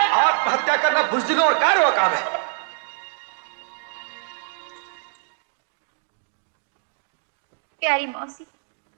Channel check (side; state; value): left; silent; digital silence